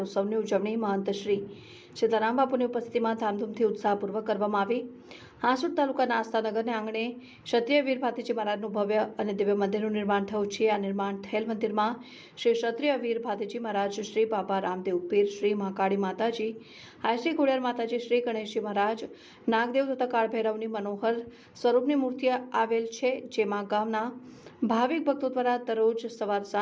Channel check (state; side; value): identical; both; correlation 1.00